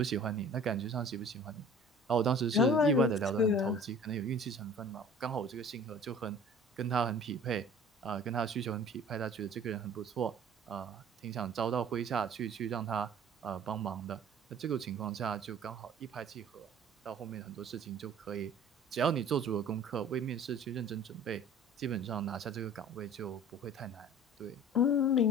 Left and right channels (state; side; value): normal; both; correlation 0.47